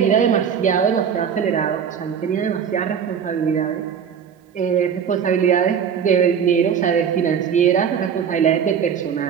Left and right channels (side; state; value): left; quieter; 7.6 dB